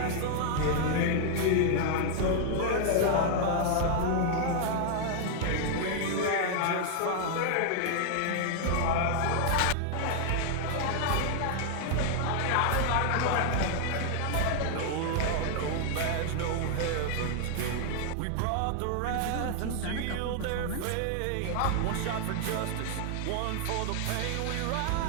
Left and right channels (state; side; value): different; both; correlation 0.00